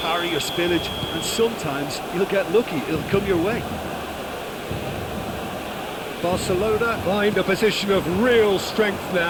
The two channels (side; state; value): both; identical; correlation 1.00